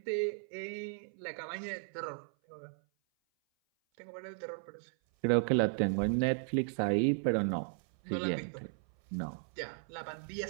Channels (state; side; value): silent; left; 54 dB below the other